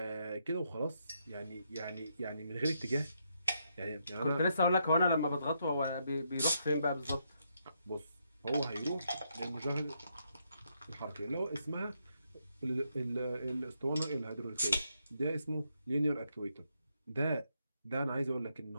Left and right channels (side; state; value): both; inverted; correlation -0.78